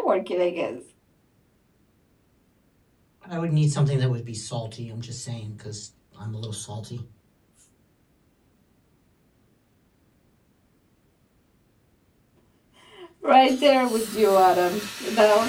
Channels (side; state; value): both; identical; correlation 1.00